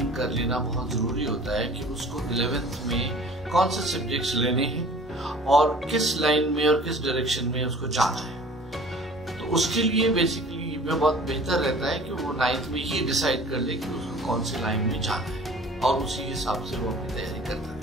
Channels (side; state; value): both; normal; correlation 0.47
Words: कर लेना बहुत ज़रूरी होता है कि उसको 11th में कौन से सब्जेक्ट्स लेने हैं और किस लाइन में और किस डायरेक्शन में उसको जाना है। तो उसके लिए बेसिकली में बहुत बेहतर रहता है कि वो 9th में ही डिसाइड कर ले कि उसको कौन सी लाइन में जाना है और उसी हिसाब से वो अपनी तैयारी करता है।